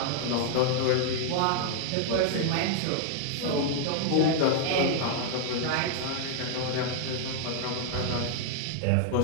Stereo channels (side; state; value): both; different; correlation 0.00